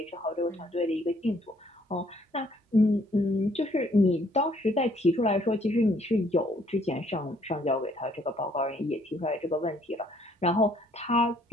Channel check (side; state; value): both; normal; correlation 0.65